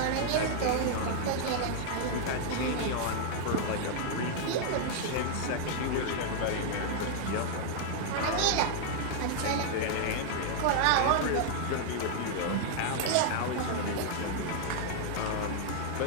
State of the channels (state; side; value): different; both; correlation -0.01